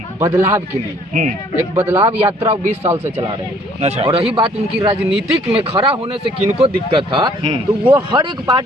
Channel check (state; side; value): normal; both; correlation 0.60